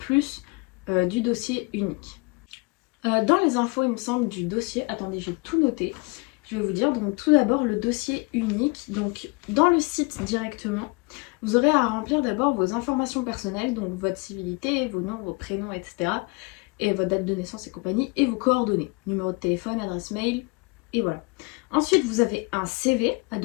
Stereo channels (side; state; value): right; quieter; 28.5 dB